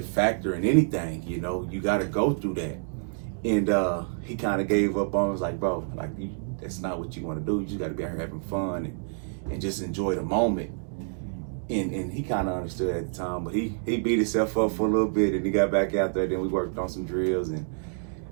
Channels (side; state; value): left; silent; digital silence